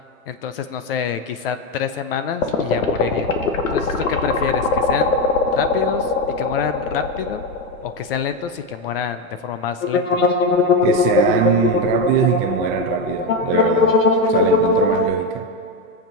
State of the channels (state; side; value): normal; both; correlation 0.10